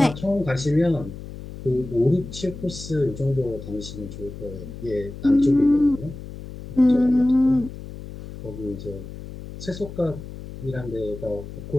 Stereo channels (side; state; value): left; noise; hum, 12 dB below the sound